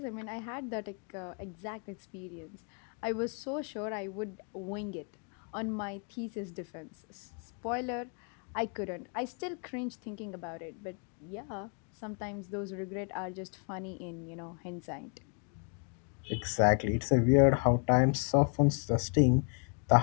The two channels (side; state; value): right; quieter; 40.0 dB